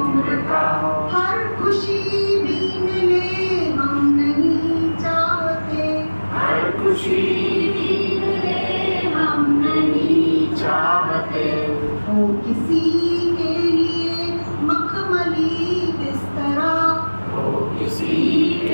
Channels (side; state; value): both; inverted; correlation -1.00